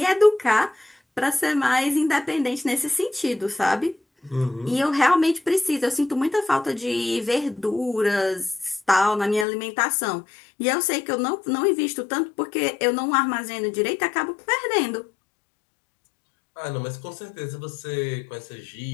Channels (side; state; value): right; drops out; at 9.5 s